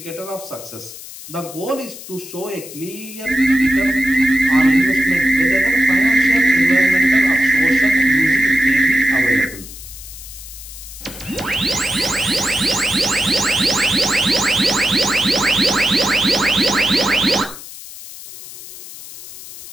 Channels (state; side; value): noise; left; hiss, 15 dB below the sound